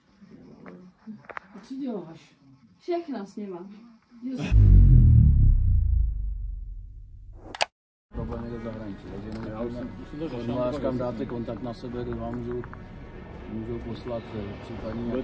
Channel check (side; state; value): both; identical; correlation 1.00